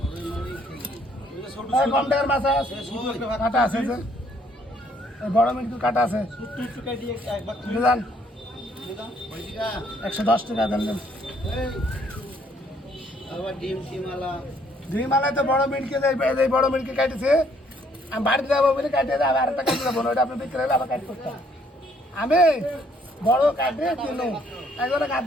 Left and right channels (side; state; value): both; normal; correlation 0.65